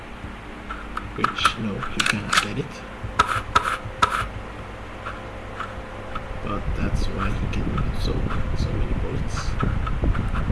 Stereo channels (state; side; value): identical; both; correlation 1.00